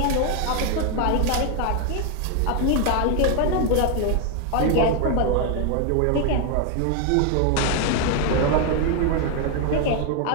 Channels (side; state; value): both; different; correlation 0.01